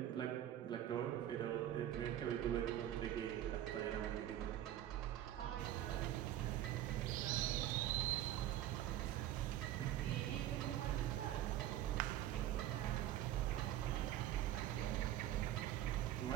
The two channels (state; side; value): quieter; left; 12.4 dB